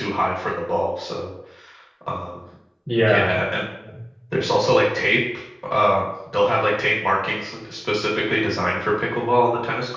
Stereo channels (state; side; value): identical; both; correlation 1.00